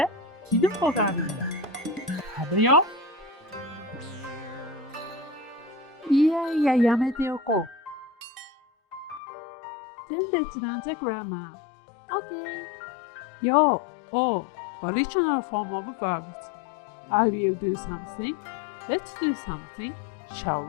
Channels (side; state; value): right; drops out; at 9.2 s